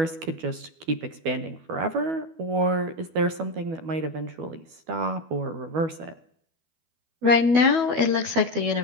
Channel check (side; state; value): left; late; 12 ms